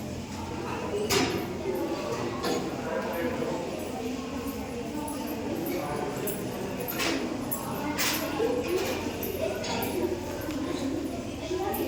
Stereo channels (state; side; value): identical; both; correlation 1.00